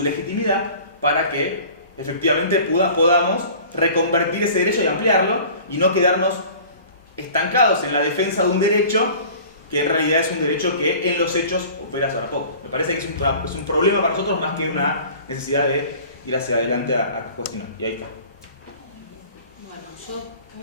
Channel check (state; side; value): inverted; both; correlation -0.45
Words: legitimidad para que efectivamente podamos reconvertir ese derecho y ampliarlo y no quedarnos estancados en la defensa de un derecho que en realidad es un derecho que en los hechos opera sobre poco. Me parece que es un problema para nosotros más que una necesidad de ir hacia adelante a cuestionar. Y ahí está. Bueno, yo